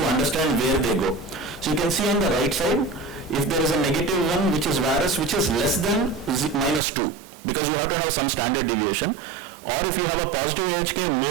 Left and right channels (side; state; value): left; drops out; at 6.8 s